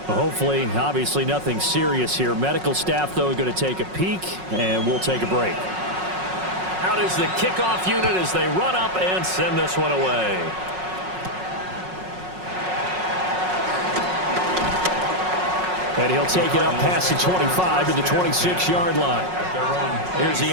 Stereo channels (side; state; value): left; late; 5.4 ms